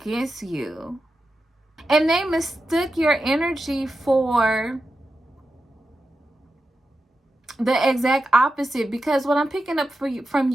you. And they mistook your energy for the exact opposite, because what I'm picking up from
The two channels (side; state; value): both; normal; correlation 0.90